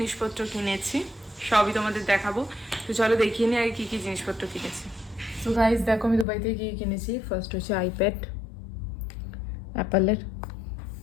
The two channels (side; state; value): right; drops out; at 6.2 s